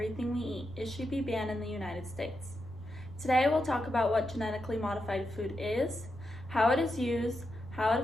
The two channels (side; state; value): right; noise; rumble, 17 dB below the sound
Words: we eat. It should be banned in the United States. Today we'll talk about what genetically modified food is, how it is used, how it